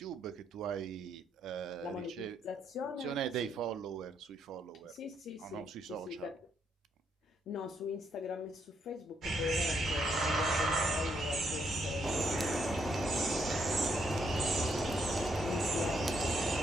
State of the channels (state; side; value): normal; both; correlation 0.75